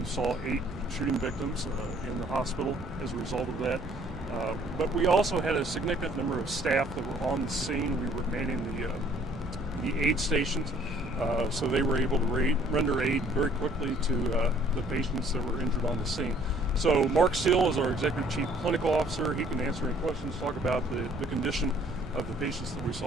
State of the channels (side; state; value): both; normal; correlation 0.59